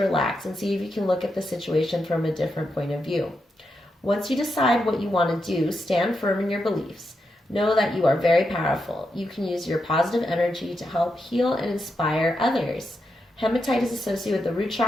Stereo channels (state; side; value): normal; both; correlation 0.85